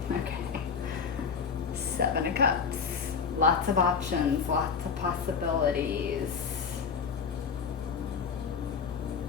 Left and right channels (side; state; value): right; quieter; 5.9 dB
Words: Okay. 7 of Cups. Lots of options, lots of possibilities.